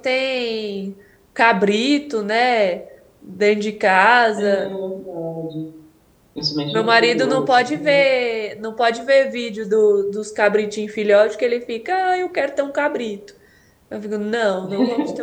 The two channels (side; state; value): both; identical; correlation 1.00